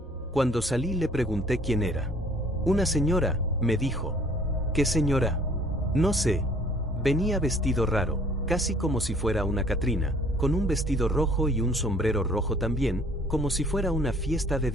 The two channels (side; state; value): both; normal; correlation 0.56